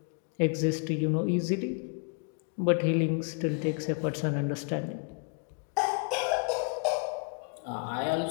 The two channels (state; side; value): quieter; right; 38.3 dB